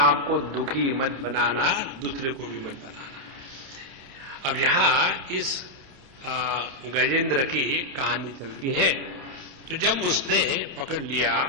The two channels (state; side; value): late; left; 29 ms